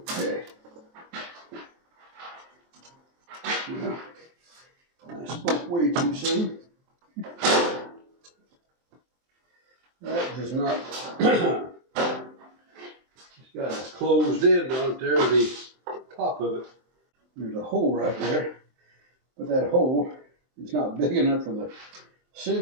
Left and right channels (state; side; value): late; left; 23 ms